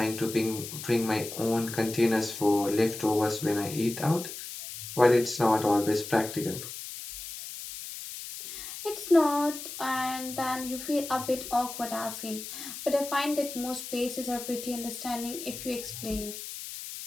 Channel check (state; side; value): noise; left; hiss, 10 dB below the sound